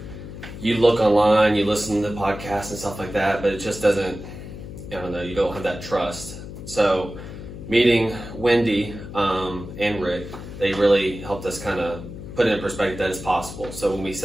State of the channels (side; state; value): left; noise; hum, 11 dB below the sound